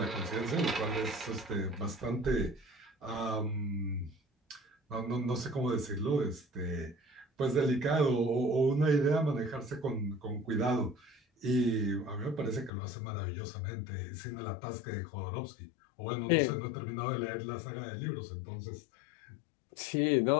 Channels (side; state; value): right; drops out; at 12.7 s